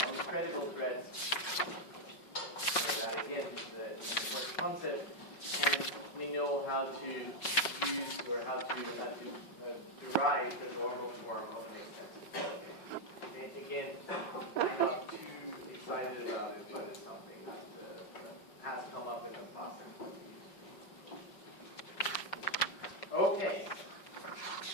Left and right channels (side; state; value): right; late; 5.3 ms